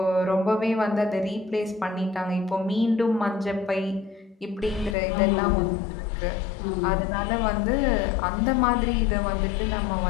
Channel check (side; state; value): right; drops out; at 5.0 s